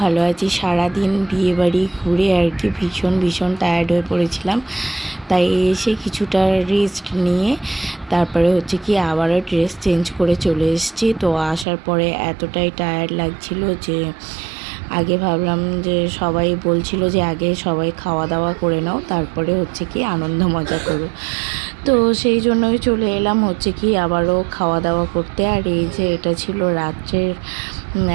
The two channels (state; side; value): drops out; left; at 11.7 s